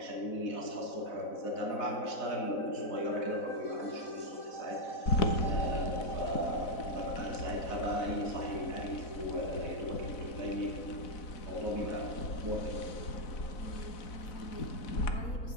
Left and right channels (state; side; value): late; right; 4.0 ms